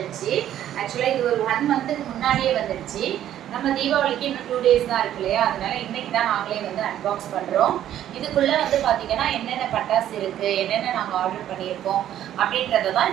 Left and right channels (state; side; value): quieter; left; 11.5 dB